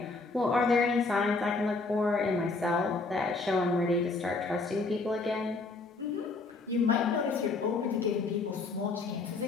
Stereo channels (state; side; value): quieter; right; 3.7 dB